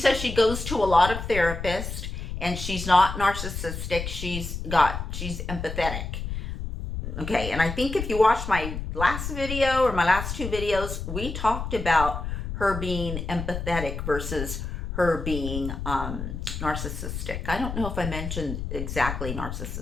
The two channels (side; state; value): left; noise; rumble, 6 dB below the sound